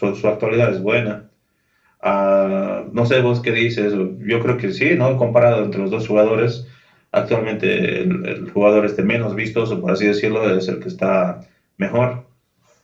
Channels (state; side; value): identical; both; correlation 1.00